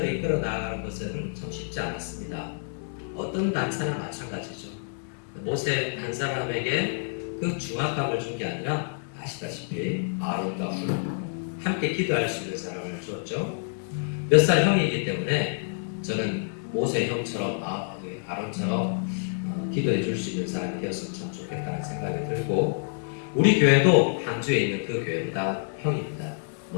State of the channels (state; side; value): silent; right; digital silence